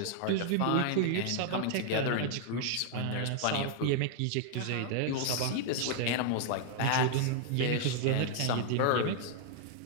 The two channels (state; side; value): different; both; correlation 0.00